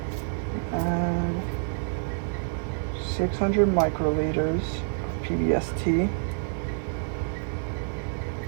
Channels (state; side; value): silent; left; digital silence